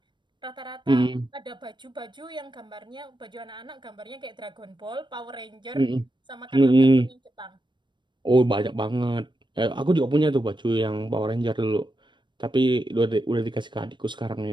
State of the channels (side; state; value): left; late; 0.22 ms